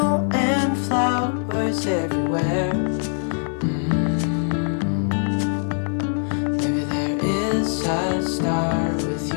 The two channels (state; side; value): silent; right; digital silence